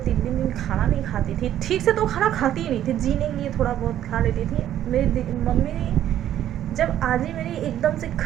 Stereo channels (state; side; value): quieter; left; 11.5 dB